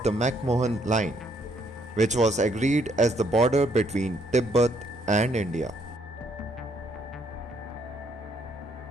the McMahon line, which was agreed as the border between Tibet and India.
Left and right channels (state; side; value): normal; both; correlation 0.69